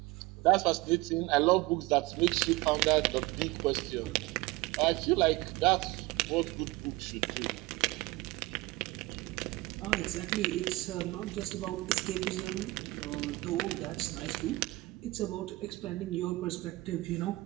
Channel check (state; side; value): quieter; left; 20.9 dB